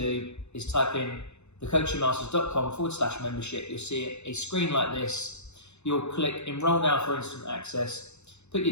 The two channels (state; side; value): late; right; 0.81 ms